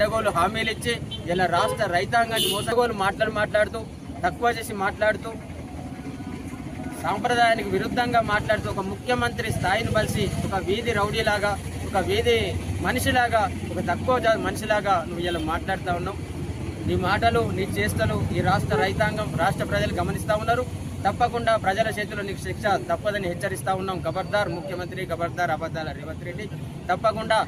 హామీలు ఇచ్చి ఇలా రాష్ట్ర రైతాంగాన్ని మోసగోలు మాట్లాడుతూ తక్కువ చేసి మాట్లాడుతూ సాంప్రదాయానికి విరుద్ధంగా మాట్లాడుతూ ఒక ముఖ్యమంత్రి స్థాయిని బలిసి ఒక వీధి రౌడీలాగా, ఒక వీధి మనిషిలాగా, ఒక తక్కువ మనిషిలాగా నువ్వు ఇలా మాట్లాడుతూ ఉన్నావు. నీ మాటలు, నీ చేష్టలు ఈ రాష్ట్ర రైతాంగం, రాష్ట్ర ప్రజలు గమనిస్తూ ఉన్నారు. తప్పకుండా ప్రజల చేతిలో నీకు శిక్ష తప్పదని హెచ్చరిస్తూ ఉన్నాం. ఖబర్దార్ ముఖ్యమంత్రి, ఖబర్దార్ అబద్ధాల రేవంత్ రెడ్డి. తప్పకుండా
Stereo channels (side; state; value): both; identical; correlation 1.00